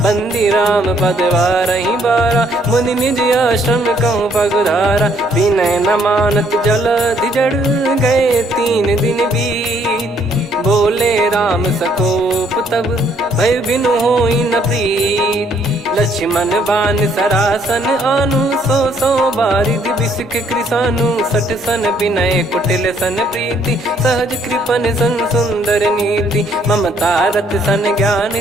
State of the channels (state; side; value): normal; both; correlation 0.67